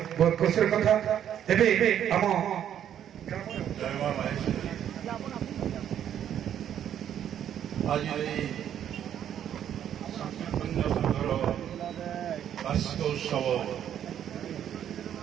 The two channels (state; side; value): quieter; left; 9.9 dB